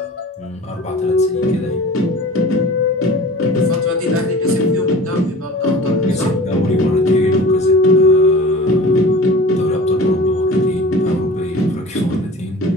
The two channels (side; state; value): both; normal; correlation 0.39